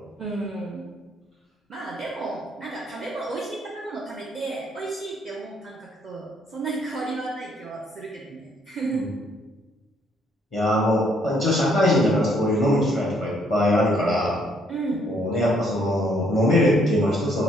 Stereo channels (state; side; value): normal; both; correlation 0.68